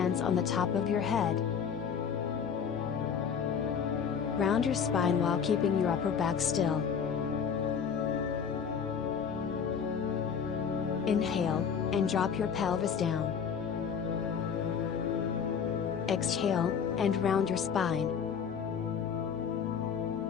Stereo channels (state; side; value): quieter; right; 7.0 dB